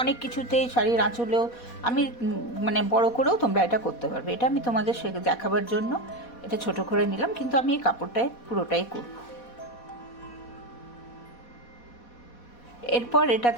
অনেক কিছুতেই, শাড়ির আঁচলেও আমি মানে বড় করেও তোমরা এটা করতে পারবে। এটা আমি তোমাদের দেখাবার জন্য এটা ছোট করে নিলাম, কিন্তু আমি এই কাপড়টায় পুরোটাই করব। এরপর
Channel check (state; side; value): late; right; 4.1 ms